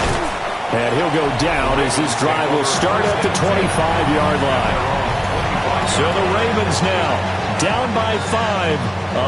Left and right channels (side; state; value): both; identical; correlation 1.00